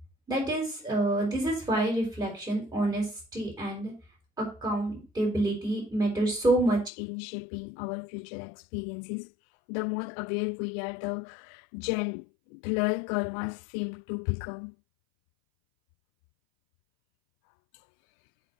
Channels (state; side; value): drops out; right; at 6.9 s